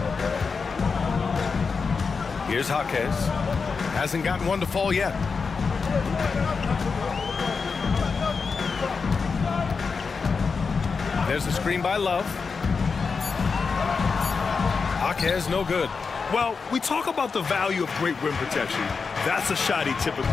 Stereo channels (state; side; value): quieter; right; 5.0 dB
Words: Here's Jaquez. Hasn't gotten one to fall yet. There's the screen by Love. Jaquez, no good. Well, we talk about the value of great rim protection. That's a shot he